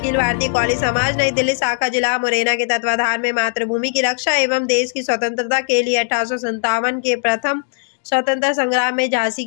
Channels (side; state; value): right; silent; digital silence